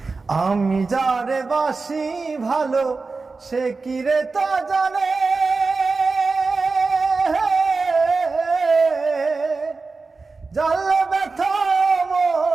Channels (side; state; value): left; quieter; 4.1 dB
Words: আমি যারে বাসি ভালো সে কি রে তা জানে, জানলে ব্যথা